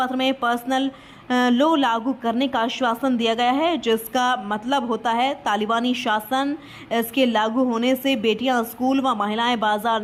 में पर्सनल लॉ लागू करने का आश्वासन दिया गया है, जिसका मतलब होता है तालिबानी शासन। इसके लागू होने से बेटियां स्कूल व महिलाएं बाजार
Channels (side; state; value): both; identical; correlation 1.00